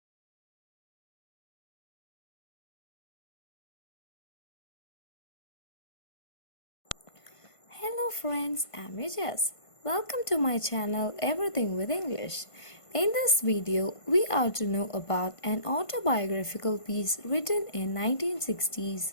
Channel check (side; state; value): right; late; 1.5 ms